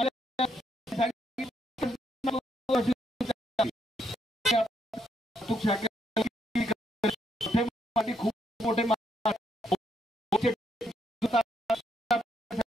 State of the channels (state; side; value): normal; both; correlation 0.75